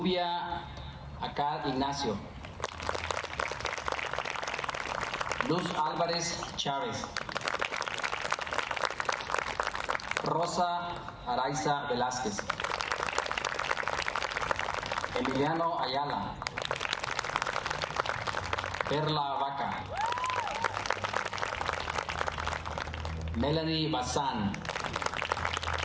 Acá Ignacio. Luz Álvarez Chávez. Rosa Araiza Velázquez. Emiliano Ayala. Perla Vaca. Melanie Bazán.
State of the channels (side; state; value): both; identical; correlation 1.00